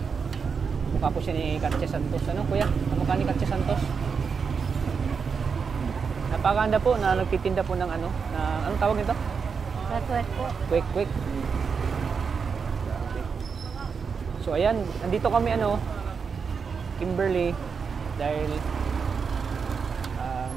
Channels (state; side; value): quieter; left; 5.8 dB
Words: Kamukha po siya ni Katya Santos. Kuya? Kamukha ni Katya Santos. Napakaganda po na nagtitinda po ng anong tawag nito? Kwek po. Kwek. So ayan, nandito kami Kimberly, dahil